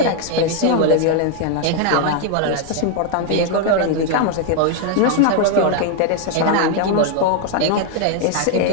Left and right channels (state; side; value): different; both; correlation 0.00